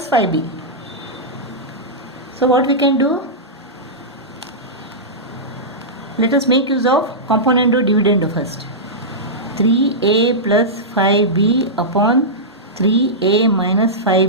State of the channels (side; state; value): both; normal; correlation -0.12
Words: 5b. So what we can do? Let us make use of componendo dividendo first. 3a plus 5b upon 3a minus